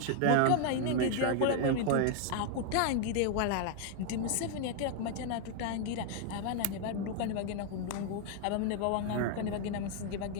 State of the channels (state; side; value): different; both; correlation 0.00